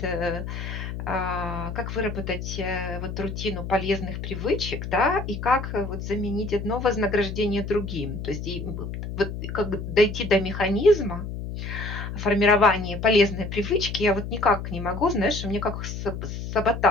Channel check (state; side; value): noise; left; hum, 6 dB below the sound